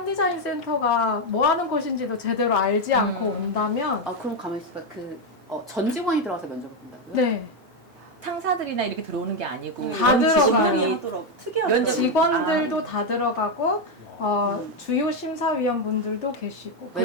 센터가 뭐 하는 곳인지도 제대로 알지 않고 온다면 그럼 가만히 있어봐. 전 직원이 들어가서 면접을 본다고요? 네. 상사들이나 이렇게 들어오는 게 아니고 다 들어가요. 하더라고. 특이하더라고요. 직원들도 다 들어가고 주요 심사위원분들도 계시고 외부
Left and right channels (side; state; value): both; normal; correlation 0.05